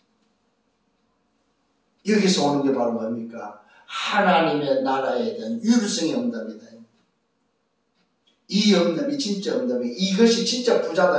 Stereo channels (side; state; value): both; identical; correlation 1.00